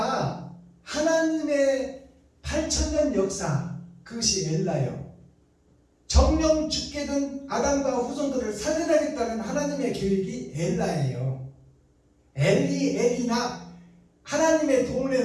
하나님의 8,000년 역사, 그것이 엘라요. 정령 죽게 된 아담과 후손들을 살려내겠다는 하나님의 계획이 엘라예요. 엘리나 하나님의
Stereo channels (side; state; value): both; identical; correlation 1.00